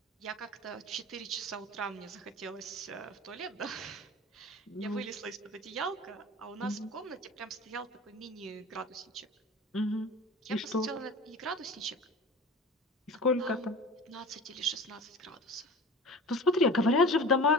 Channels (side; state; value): both; normal; correlation 0.37